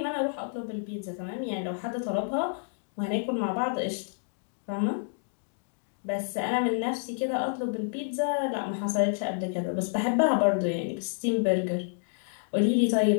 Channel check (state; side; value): silent; right; digital silence